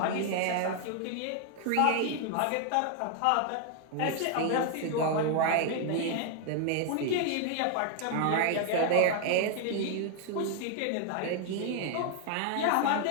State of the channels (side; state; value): both; different; correlation 0.00